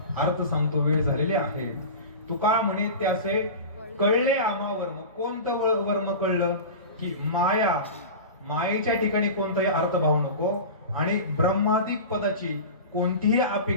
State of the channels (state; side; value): inverted; both; correlation -0.31